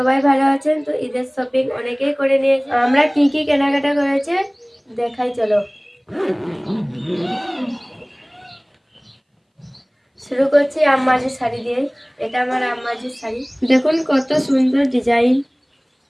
ভালো আছেন। তো ঈদের শপিং অনেকেই করে নিয়েছে। আমরা কি কি কেনাকাটা করেছে দেখাই, চলো শুরু করছি আম্মাজির শাড়ি দিয়ে। এটা আমার আম্মাজির শাড়ি, দেখুন কত সুন্দর ডিজাইন।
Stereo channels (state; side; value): identical; both; correlation 1.00